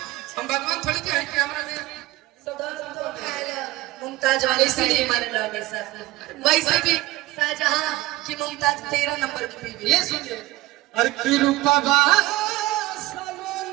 हम भगवान थोड़ी के हैं कि हमारा में मुमताज वाले इसलिए मारे लगे सर, वैसे भी शाहजहां की मुमताज 13 नंबर की बीवी। ये सुनिए, अरे की रूपा बा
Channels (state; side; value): quieter; left; 18.3 dB